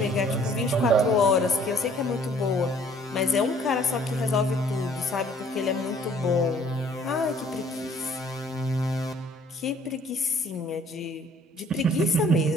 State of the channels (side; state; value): both; normal; correlation 0.57